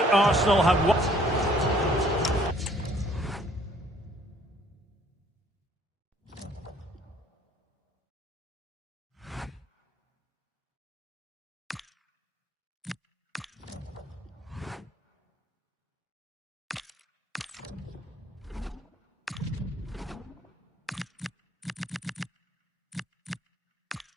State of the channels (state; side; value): normal; both; correlation 0.60